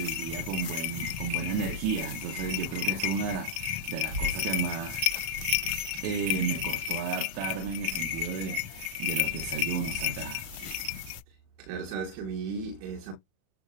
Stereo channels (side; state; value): left; late; 36 ms